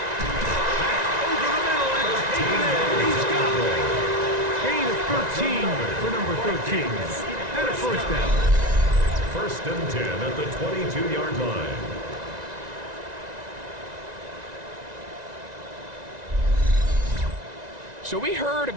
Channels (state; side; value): late; left; 1.9 ms